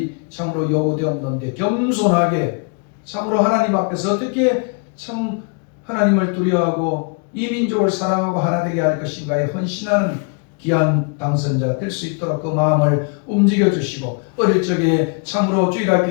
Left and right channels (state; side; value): quieter; right; 36.2 dB